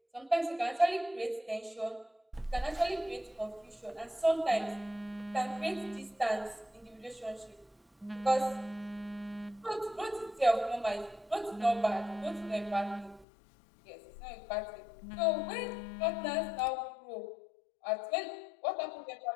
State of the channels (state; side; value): drops out; right; at 13.2 s